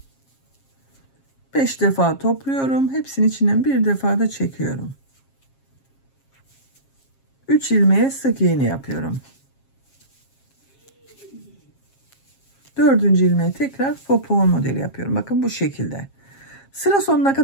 5 defa topluyorum. Hepsinin içinden bir defa da çekiyorum. 3 ilmeğe sık iğne yapıyorum. 4. ilmeğe tekrar popcorn modeli yapıyorum. Bakın bu şekilde. Sıra sonuna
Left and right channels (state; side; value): late; right; 7.4 ms